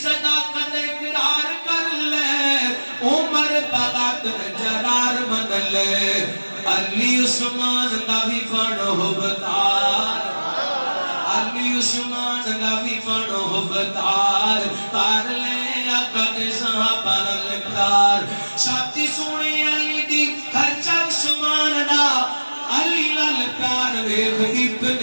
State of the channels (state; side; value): inverted; both; correlation -1.00